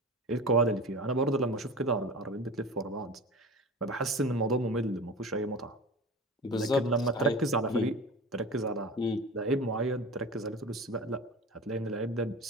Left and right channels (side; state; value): both; normal; correlation 0.33